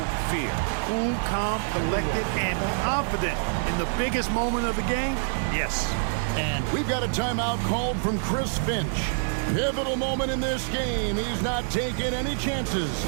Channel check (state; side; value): silent; left; 61 dB below the other